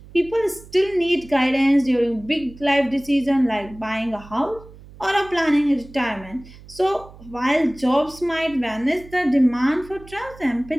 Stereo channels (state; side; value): noise; right; hum, 20 dB below the sound